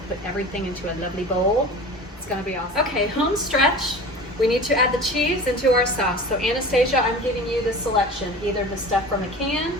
put everything into a lovely bowl. It's going to be awesome. Okay, home stretch. We need to add the cheese into our sauce. So Anastasia, I'm giving you the selection, either the stuff from a can,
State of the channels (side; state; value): both; normal; correlation 0.36